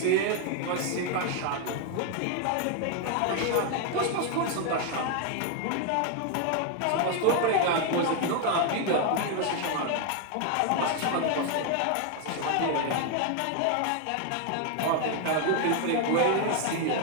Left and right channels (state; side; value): different; both; correlation 0.01